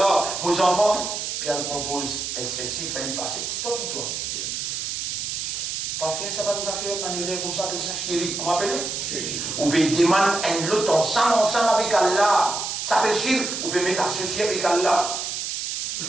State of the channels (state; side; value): noise; right; hiss, 3 dB below the sound